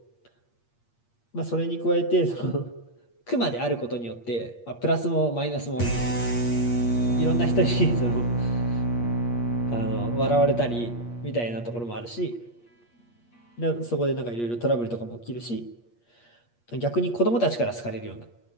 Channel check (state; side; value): late; right; 8.5 ms